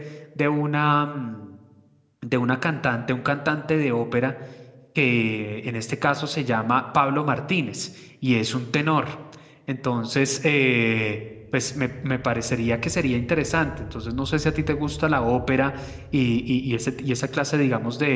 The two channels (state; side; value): identical; both; correlation 1.00